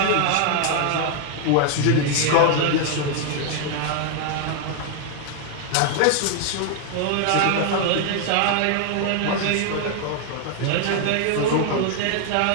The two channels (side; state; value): both; different; correlation 0.00